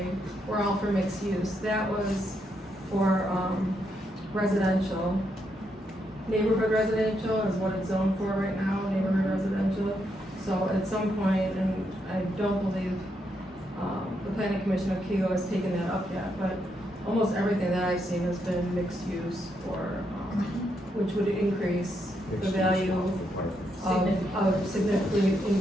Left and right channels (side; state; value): both; normal; correlation 0.79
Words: were all for mixed use. That was for, residential. Neighborhood residential is what it's zoned for right now, neighborhood residential. So at some point, and I don't believe, the planning commission of Kego has taken that up yet, but almost everything that I've seen has been mixed use for, which would increase the value of significantly